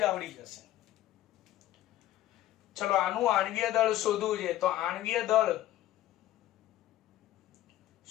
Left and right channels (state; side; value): quieter; right; 14.0 dB